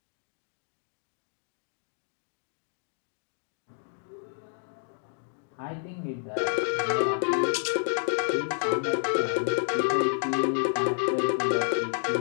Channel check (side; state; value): right; silent; 58 dB below the other